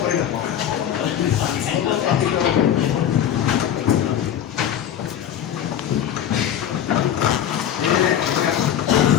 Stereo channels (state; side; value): quieter; right; 9.9 dB